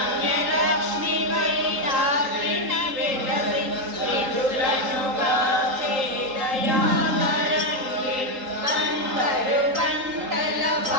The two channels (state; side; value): late; left; 3.8 ms